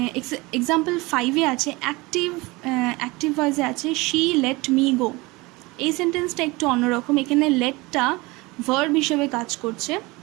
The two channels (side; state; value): left; quieter; 23.3 dB